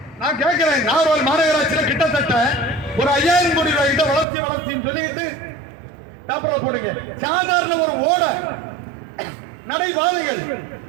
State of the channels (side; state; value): left; drops out; at 4.2 s